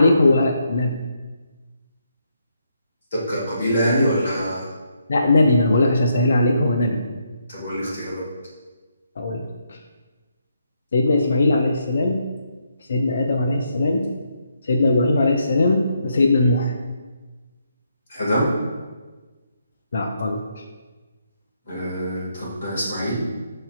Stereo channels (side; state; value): both; inverted; correlation -0.77